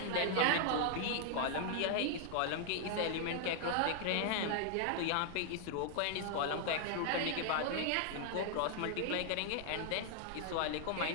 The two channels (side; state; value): both; different; correlation 0.00